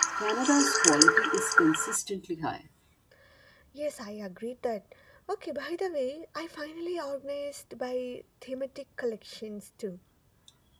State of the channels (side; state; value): both; identical; correlation 1.00